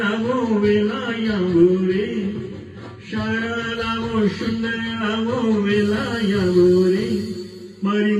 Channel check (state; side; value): identical; both; correlation 1.00